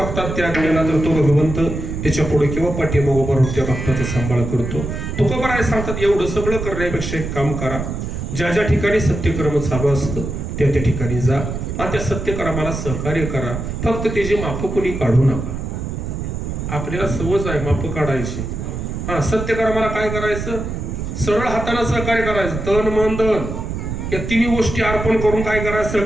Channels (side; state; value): right; noise; rumble, 5 dB below the sound